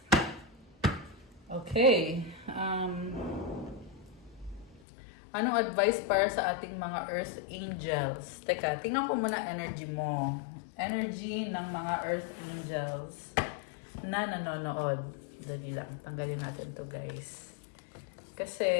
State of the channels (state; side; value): drops out; right; at 4.8 s